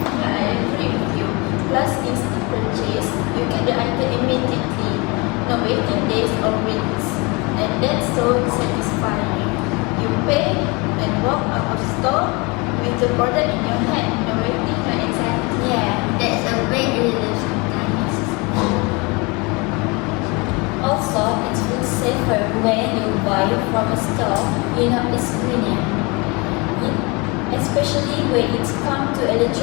I agree with you. Plus, instant purchase, you get the item immediately, no waiting days or weeks, and that's so satisfying. You pay and walk out of store with the product in your hand, no waiting, no anxiety. Yeah. That's a great relief sometimes. Also, it feels safer when you buy from a store you know it's cleaner. Especially when it's come to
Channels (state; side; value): quieter; right; 27.7 dB